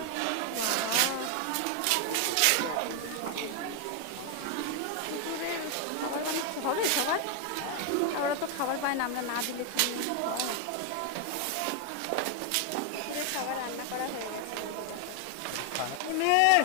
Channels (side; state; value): both; different; correlation 0.01